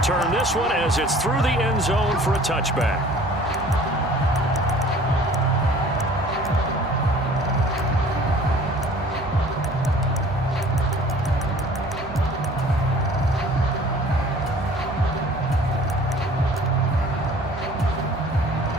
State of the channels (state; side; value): normal; both; correlation 0.50